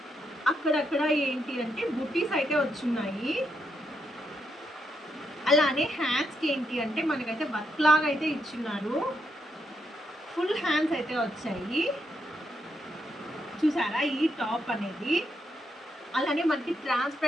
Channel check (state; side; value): normal; both; correlation 0.80